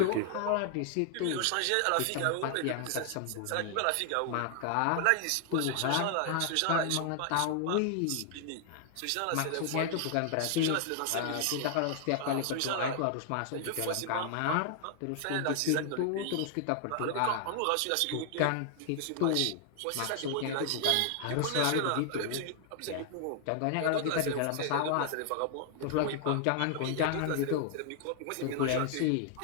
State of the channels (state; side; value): different; both; correlation 0.00